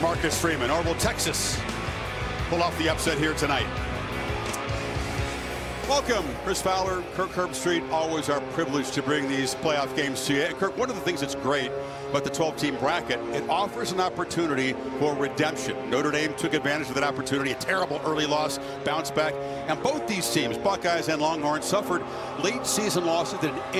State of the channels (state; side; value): identical; both; correlation 1.00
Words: Marcus Freeman, or will Texas pull off the upset here tonight? Welcome, Chris Fowler, Kirk Herbstreit. Always our privilege to bring these playoff games to you. And Kirk, one of the things that's great about the 12-team bracket, it offers an opportunity for redemption. Notre Dame took advantage of that opportunity. A terrible early loss, bounce back. And both these teams, Buckeyes and Longhorns, suffered late season losses that